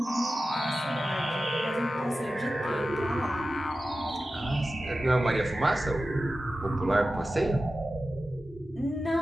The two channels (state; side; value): normal; both; correlation 0.94